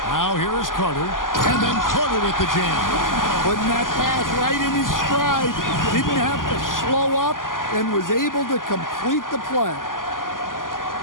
Now here is Carter. And then Carter with the jam. Putting that pass right in his stride. Didn't have to slow up and was able to complete the play.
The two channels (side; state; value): right; late; 0.90 ms